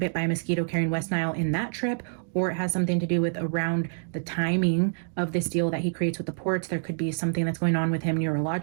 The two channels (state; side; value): silent; left; digital silence